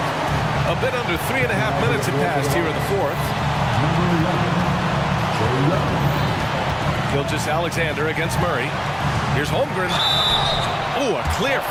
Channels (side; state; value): both; identical; correlation 1.00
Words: A bit under 3.5 minutes have passed here in the fourth. Gilgeous-Alexander against Murray. Here's Holmgren. Ooh, a clear